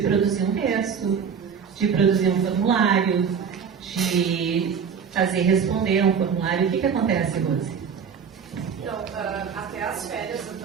um texto, de produzir um formulário, de fazer responder um formulário. O que acontece, Rose? Então, até as férias eu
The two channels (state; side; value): quieter; left; 6.8 dB